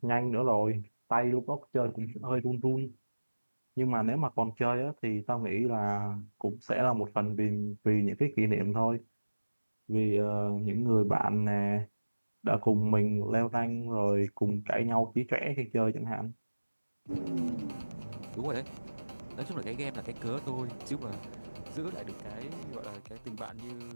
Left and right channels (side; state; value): both; inverted; correlation -1.00